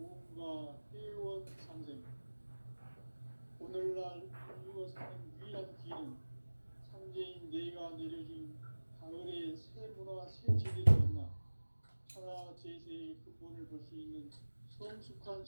회원 상생. 오늘날 인류가 사는 유일한 길은 상제인 내가 내려준 가을의 새 문화, 새 진리를 만나 천하 제세의 근본을 볼 수 있는 성숙한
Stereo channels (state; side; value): inverted; both; correlation -1.00